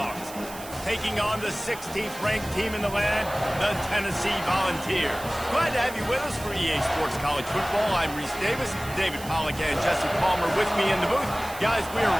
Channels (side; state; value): right; noise; hiss, 15 dB below the sound